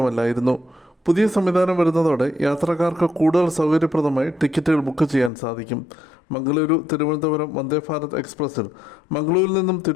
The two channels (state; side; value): drops out; right; at 5.3 s